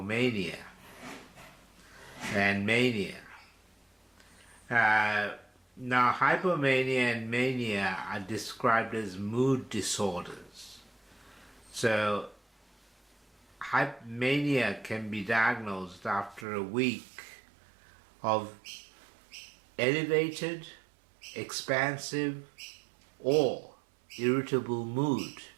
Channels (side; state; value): left; drops out; at 16.4 s